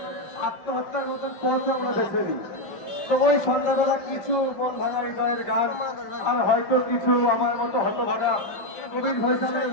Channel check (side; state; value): right; late; 5.1 ms